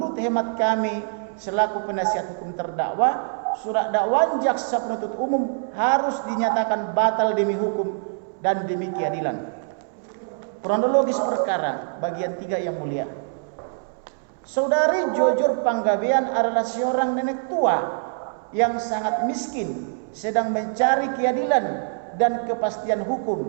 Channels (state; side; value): silent; left; 62 dB below the other